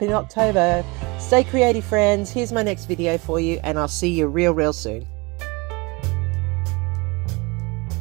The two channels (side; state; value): left; quieter; 25.9 dB